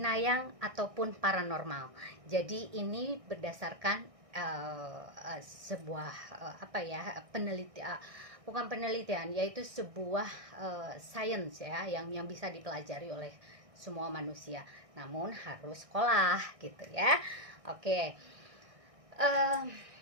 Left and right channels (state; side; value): late; left; 1.6 ms